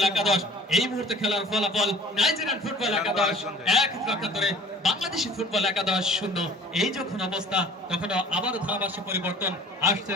একাদশ। এই মুহূর্তে খেলার ফলাফল নাইজেরিয়ান ফুটবল একাদশ 1, একাত্তরে বাংলাদেশি ফুটবল একাদশ 0। এই যখন অবস্থা তখন আবার ধারাভাষ্য পরিবর্তন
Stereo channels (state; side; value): normal; both; correlation 0.47